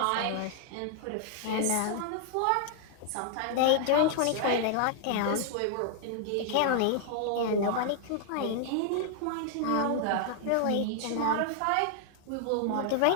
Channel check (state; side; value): different; both; correlation 0.00